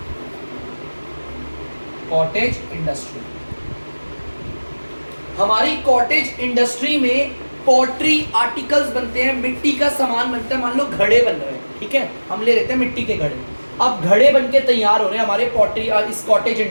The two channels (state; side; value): inverted; both; correlation -1.00